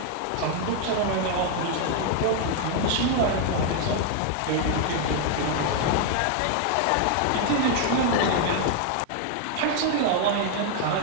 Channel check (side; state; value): both; different; correlation 0.00